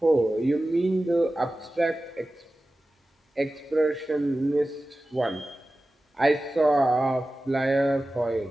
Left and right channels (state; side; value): normal; both; correlation 0.95